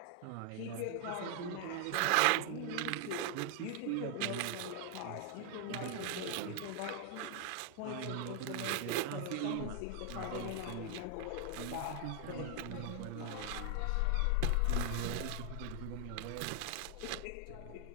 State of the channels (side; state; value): both; different; correlation 0.00